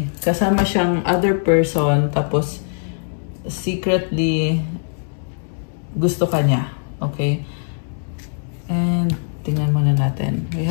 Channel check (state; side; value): silent; right; digital silence